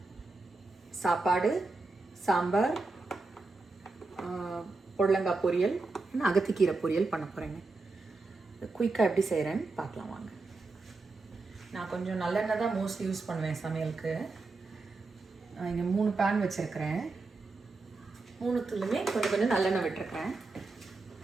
சாப்பாடு, சாம்பார், புடலங்காய் பொரியல், அகத்திக்கீரை பொரியல் பண்ண போகிறேங்க. குயிக்காக எப்படி செய்கிறேன்னு பார்க்கலாம் வாங்க. நான் கொஞ்சம் நல்லெண்ணெய் தான் மோஸ்ட்லி யூஸ் பண்ணுவேன் சமையலுக்கு. இங்கே 3 பேன் வச்சுருக்கிறேன். 3த்துலையுமே கொஞ்சம் நல்லெண்ணெய் விட்டுருக்கிறேன்.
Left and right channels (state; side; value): quieter; left; 3.6 dB